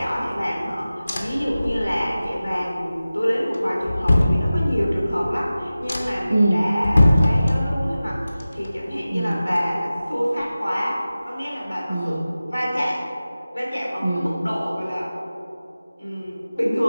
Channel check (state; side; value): inverted; both; correlation -0.96